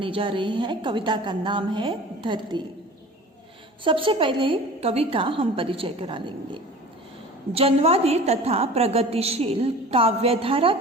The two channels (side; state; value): both; normal; correlation 0.40